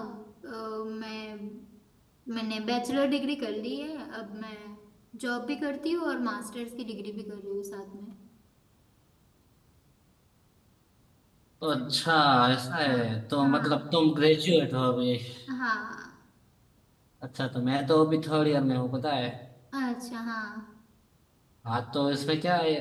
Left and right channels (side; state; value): both; identical; correlation 1.00